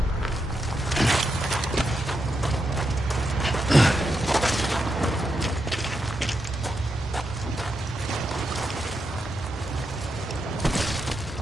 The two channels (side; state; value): both; normal; correlation 0.84